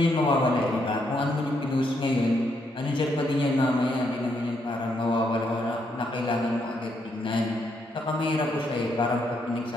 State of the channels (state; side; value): normal; both; correlation 0.76